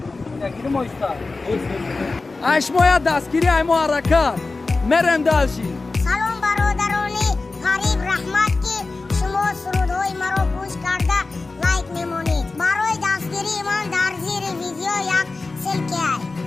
اشمایا دستگیری ایمو حرکت مرم دلشی. سلام برادرانی غریب رحمت که شما سرودهای مرا گوش کرده لایک میمونید. برای دستگیری من در زیر ویدیو یک سلکه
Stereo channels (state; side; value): quieter; right; 3.7 dB